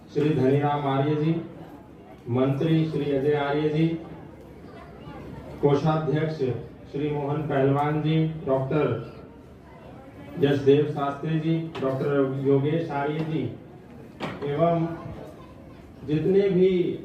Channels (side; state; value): both; identical; correlation 1.00